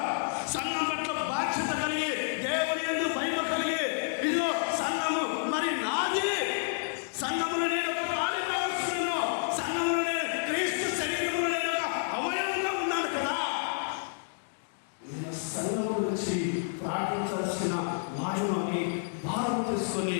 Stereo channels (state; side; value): silent; right; digital silence